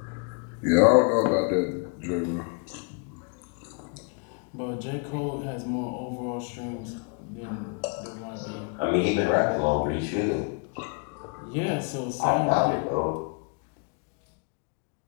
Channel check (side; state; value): right; quieter; 36.1 dB